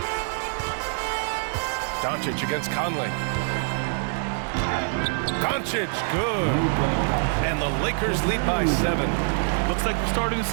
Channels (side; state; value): left; silent; digital silence